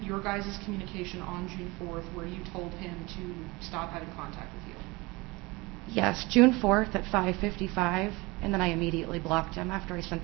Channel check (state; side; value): quieter; left; 23.9 dB